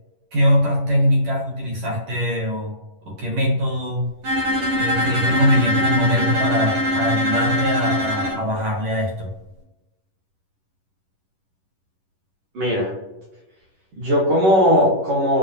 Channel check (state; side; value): late; left; 11 ms